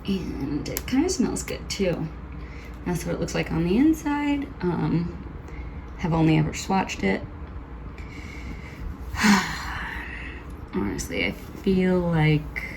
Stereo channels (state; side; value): identical; both; correlation 1.00